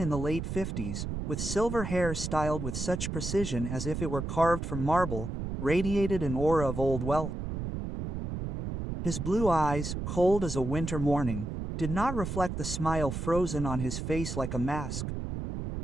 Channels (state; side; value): noise; right; rumble, 5 dB below the sound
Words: the late 50s, with silver hair styled with such precision as if it were carved from marble, radiated an aura of old wealth. His blue eyes, cold as a winter morning, did not reflect the smile frozen on his face like a mask.